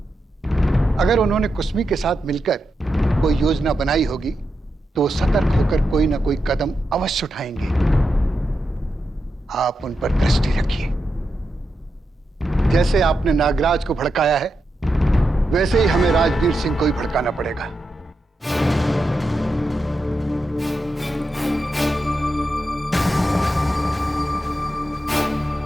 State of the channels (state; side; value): normal; both; correlation 0.87